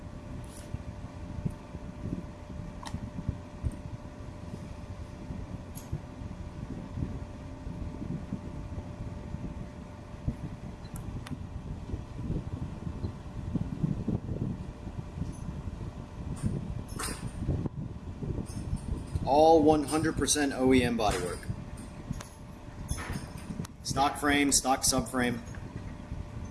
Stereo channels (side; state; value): both; identical; correlation 1.00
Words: All 100% OEM bodywork. Stock frame, stock subframe.